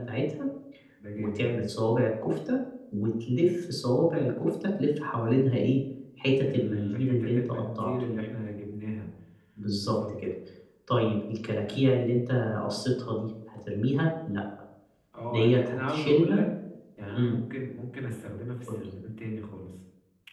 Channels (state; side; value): identical; both; correlation 1.00